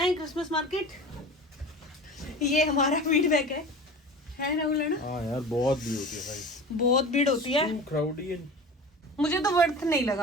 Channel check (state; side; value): normal; both; correlation 0.35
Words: क्रिसमस मार्केट, ये हमारा फीडबैक है राहुल, है ना? हाँ यार, बहुत भीड़ होती है भाई, बहुत भीड़ होती है, क्राउडी है। मुझे तो वर्थ नहीं